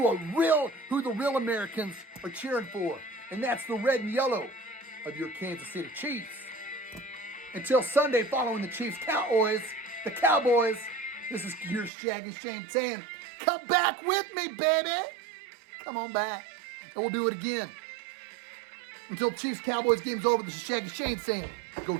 the real Americans are cheering for. And that's the red and yellow of your Kansas City Chiefs. Until Sunday, following the Chiefs the Cowboys, this is your Shaggyshane saying, come back with me, baby. Come on back. And we'll do it again. Until Chiefs Cowboys game's over, this is Shaggyshane saying, go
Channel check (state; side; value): drops out; left; at 11.9 s